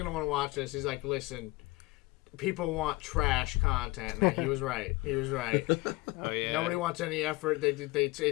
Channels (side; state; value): right; quieter; 21.8 dB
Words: want to watch this. He's like, listen, people want trash content. And he was right. He was right. Oh yeah. Nobody wants any effort.